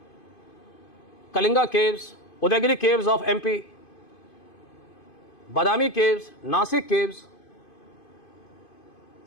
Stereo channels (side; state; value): right; late; 2.5 ms